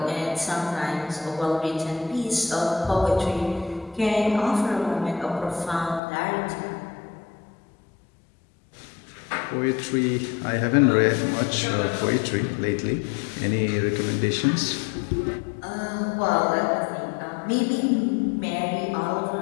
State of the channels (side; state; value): right; drops out; at 6.0 s